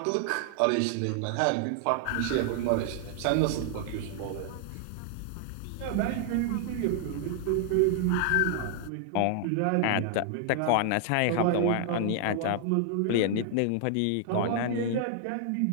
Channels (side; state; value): both; different; correlation 0.00